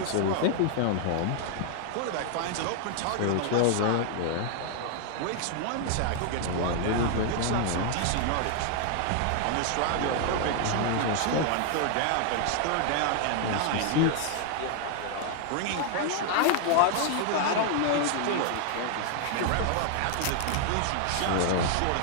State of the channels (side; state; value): both; different; correlation 0.00